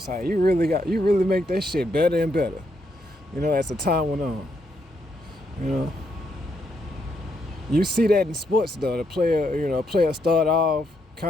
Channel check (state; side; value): normal; both; correlation 0.77